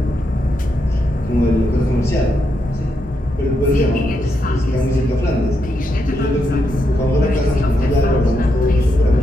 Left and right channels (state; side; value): normal; both; correlation 0.82